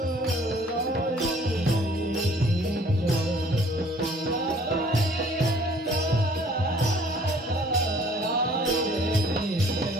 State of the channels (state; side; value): normal; both; correlation 0.56